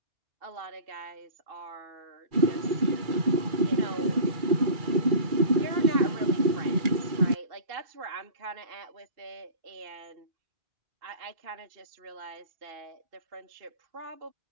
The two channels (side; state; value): left; late; 2.3 ms